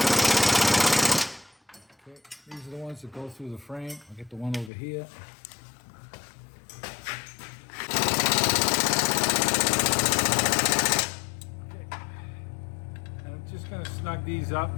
Okay, these are the ones that go through the frame. I get the one over here. Just gonna snug these up.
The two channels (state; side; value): drops out; right; at 4.7 s